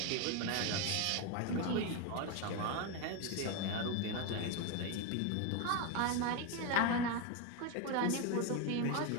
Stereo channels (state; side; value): different; both; correlation 0.02